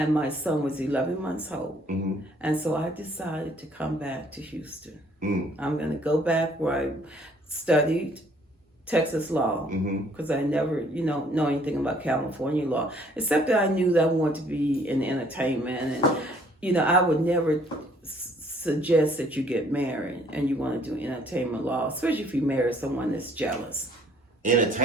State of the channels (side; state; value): both; normal; correlation 0.61